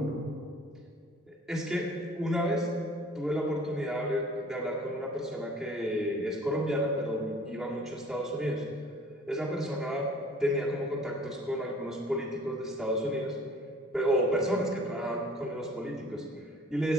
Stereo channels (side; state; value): both; normal; correlation 0.50